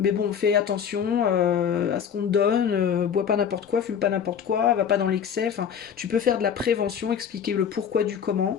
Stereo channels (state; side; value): quieter; right; 7.8 dB